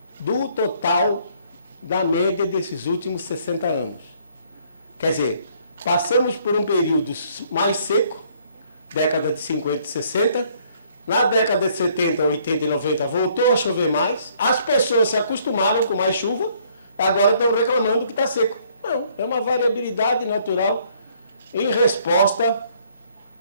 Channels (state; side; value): inverted; both; correlation -0.64